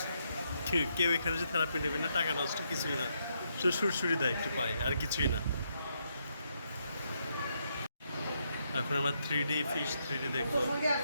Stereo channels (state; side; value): inverted; both; correlation -0.78